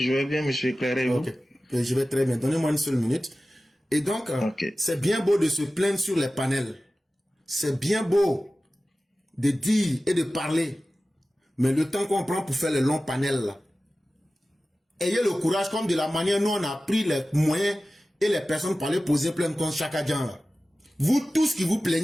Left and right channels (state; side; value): normal; both; correlation 0.96